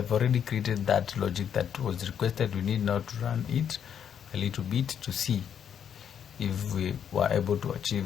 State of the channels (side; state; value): right; quieter; 8.5 dB